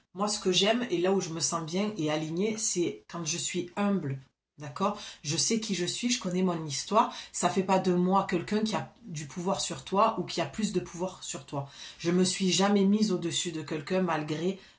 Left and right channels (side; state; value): both; identical; correlation 1.00